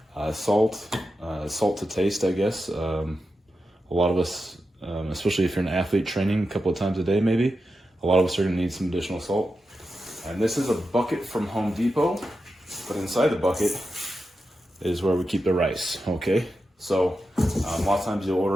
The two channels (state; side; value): normal; both; correlation 0.89